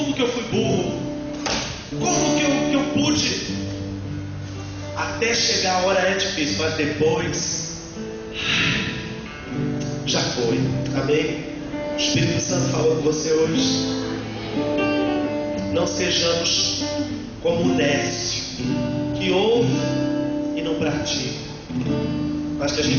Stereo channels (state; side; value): identical; both; correlation 1.00